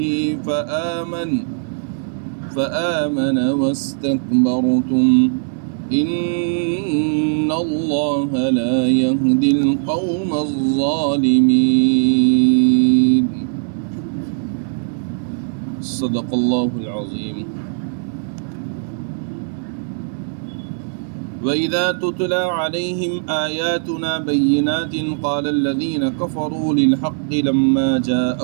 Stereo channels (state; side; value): silent; left; 66 dB below the other